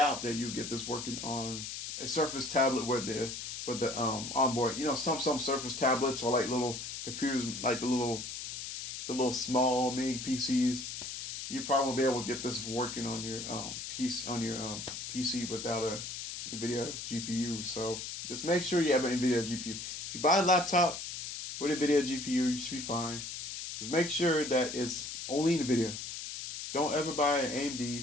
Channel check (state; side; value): noise; left; hiss, 7 dB below the sound